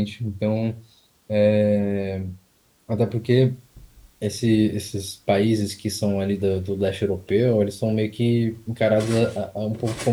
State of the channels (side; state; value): both; identical; correlation 1.00